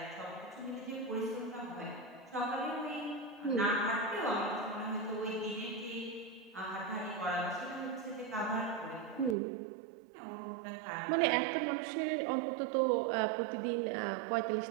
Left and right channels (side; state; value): left; drops out; at 9.3 s